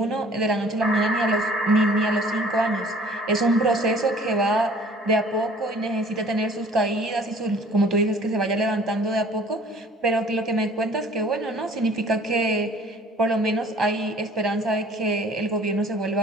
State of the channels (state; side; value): normal; both; correlation 0.52